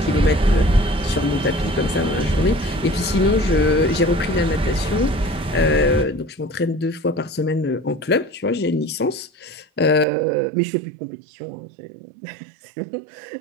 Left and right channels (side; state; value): left; drops out; at 10.1 s